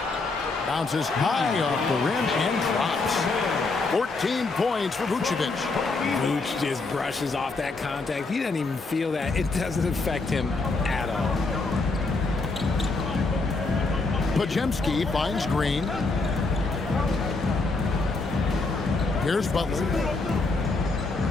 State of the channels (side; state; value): right; quieter; 3.6 dB